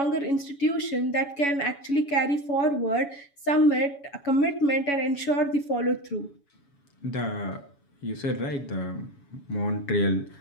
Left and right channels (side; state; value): right; late; 7.1 ms